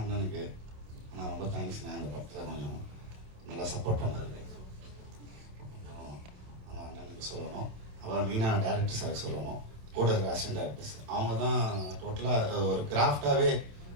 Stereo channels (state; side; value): late; left; 27 ms